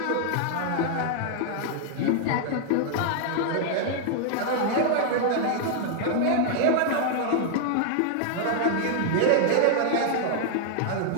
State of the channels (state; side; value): different; both; correlation 0.00